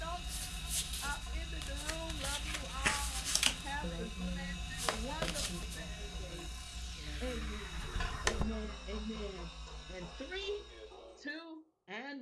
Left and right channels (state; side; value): identical; both; correlation 1.00